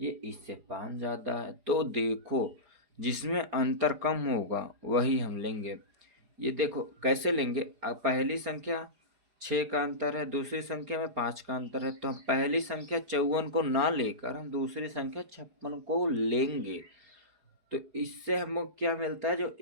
ये इससे 5 ज़्यादा है, तो देखो जिसमें अंतर कम होगा वही हम लेंगे। ये देखो कैसे लेंगे, पहली संख्या 6 का अंतर है, दूसरी संख्या में 5 का अंतर है, तो हम पहली संख्या 54 को ना लेकर हम दूसरी संख्या 56 को लेंगे। तो इससे हमको क्या मिलता है, जो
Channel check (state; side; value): late; left; 4.8 ms